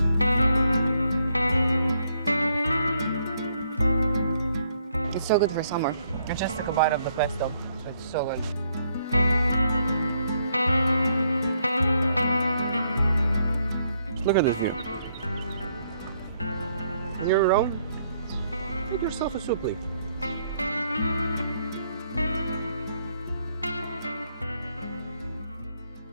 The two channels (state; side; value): inverted; both; correlation -0.72